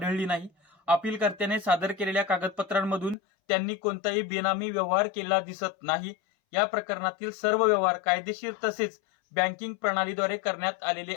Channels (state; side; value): drops out; right; at 3.2 s